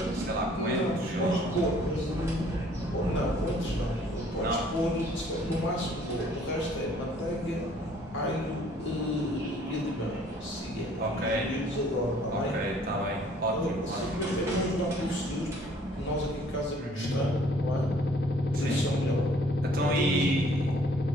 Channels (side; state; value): both; normal; correlation 0.58